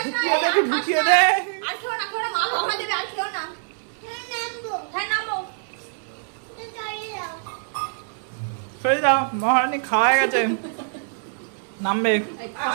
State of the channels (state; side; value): silent; left; digital silence